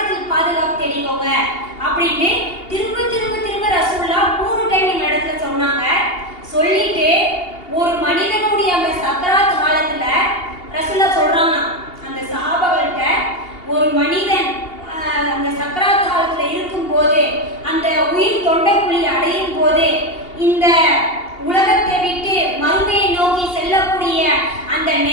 பாதுகாப்பு தேடிக்கோங்க அப்படின்னு திரும்ப ரசூலா 3 டைம் எங்க இடத்துல சொன்னாங்க. சொல்லிட்டு ஒரு மனிதனுடைய அந்த சக்கராத் காலத்துல ரசூலா சொல்றாங்க அந்த சஹாபாக்கள்கிட்ட, ஒரு மனிதன் அந்த சக்கராத் காலத்துல இருக்கும் போது, அந்த உயிர் தொண்டைக்குழி அடையும் போது, இந்த உலகத்தை விட்டு மறுமையை நோக்கி செல்லக்கூடிய அந்த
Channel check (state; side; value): late; right; 2.8 ms